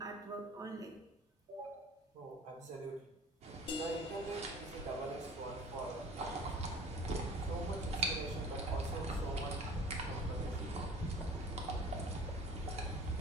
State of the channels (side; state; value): both; normal; correlation 0.44